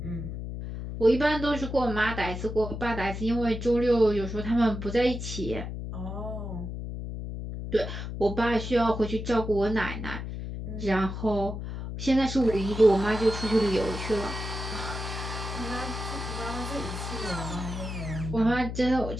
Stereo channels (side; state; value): left; noise; hum, 6 dB below the sound